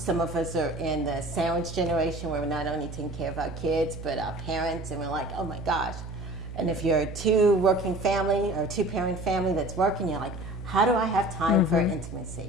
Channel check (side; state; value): right; noise; hum, 10 dB below the sound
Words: of us are in the sandwich generation where we're not only taking care of our kids, but our parents, and we're like, oh my gosh. And if you're a two-working family or two-parent family that's working, you're like, how do I have time for